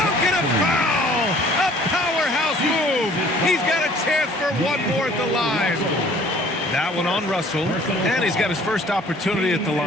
and a foul! A powerhouse move! He's got a chance for one more at the line. That one on Russell, and he's got his first opportunity at the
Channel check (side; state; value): both; normal; correlation 0.54